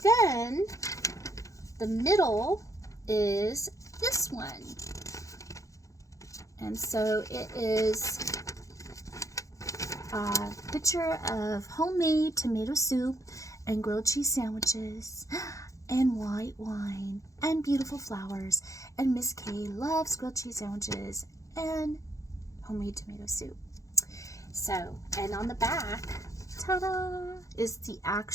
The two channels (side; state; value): right; late; 0.16 ms